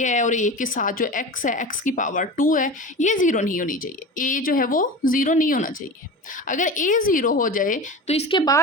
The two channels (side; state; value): both; normal; correlation 0.31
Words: है और ए के साथ जो एक्स है, एक्स की पावर 2 है, ये ज़ीरो नहीं होनी चाहिए। ए जो है वो ज़ीरो नहीं होना चाहिए। अगर ए ज़ीरो हो जाए तो इसके